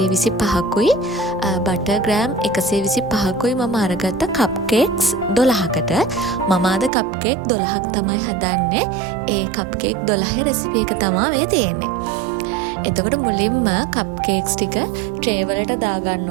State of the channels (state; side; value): drops out; left; at 6.9 s